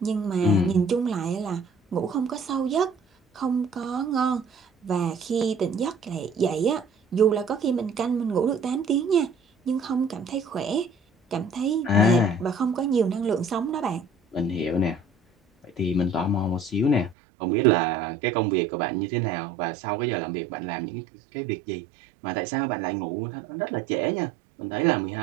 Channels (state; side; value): drops out; left; at 17.2 s